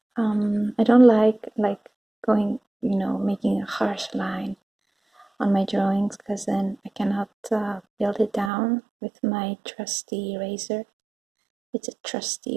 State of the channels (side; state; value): left; drops out; at 8.5 s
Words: I don't like going, you know, making a harsh line on my drawings, because then I cannot build it down with my trusty eraser. It's a